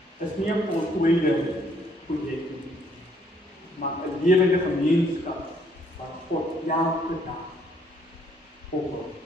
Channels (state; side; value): normal; both; correlation 0.66